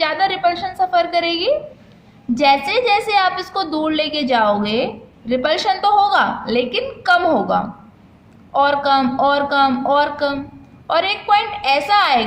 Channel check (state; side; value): identical; both; correlation 1.00